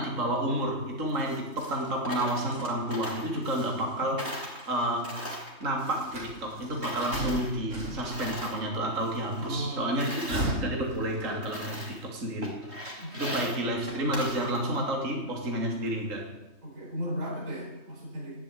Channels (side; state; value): left; late; 3.2 ms